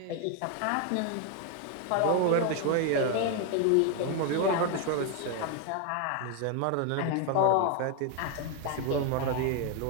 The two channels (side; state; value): both; different; correlation 0.01